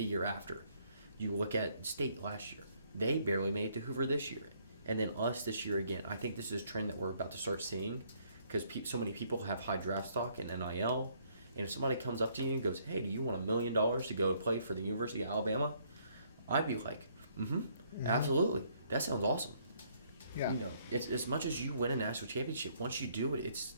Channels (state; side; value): inverted; both; correlation -0.67